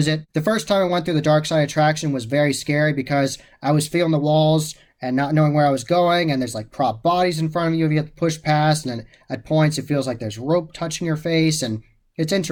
it. The first time I went through the Darkside attraction was very scary because I was feeling the walls and not knowing where I was going, and there's like prop bodies in front of you if you have to push past, and then at points it feels like there's rope touching your face, and it's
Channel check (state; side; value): identical; both; correlation 1.00